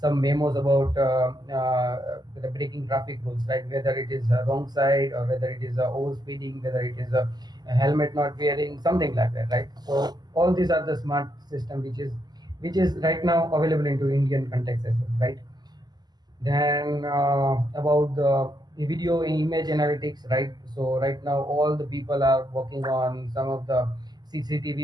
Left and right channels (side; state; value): left; late; 0.20 ms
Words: memos about the breaking traffic rules, right? Whether it is wrong side, or whether it is overspeeding, whether it is a helmet not wearing, something like that, right? So all these are the smart system which is right now available into Indian context as well, right? Then about the video and image analytics, right? So right now all the people are working on some of the